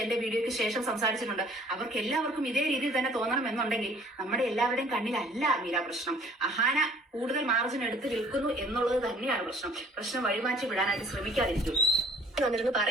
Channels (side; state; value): both; normal; correlation 0.54